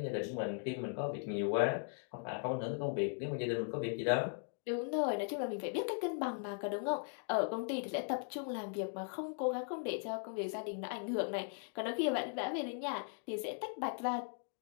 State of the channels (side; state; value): right; silent; 52 dB below the other